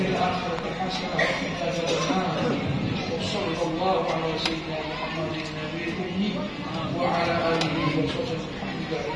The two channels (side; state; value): both; identical; correlation 1.00